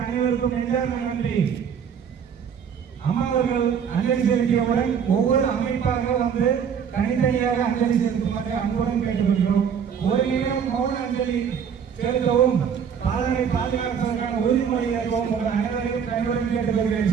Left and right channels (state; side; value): quieter; left; 7.4 dB